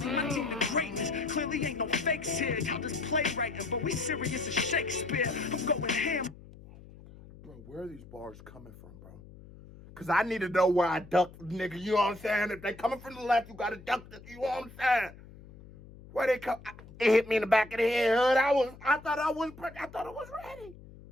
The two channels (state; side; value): noise; left; hum, 19 dB below the sound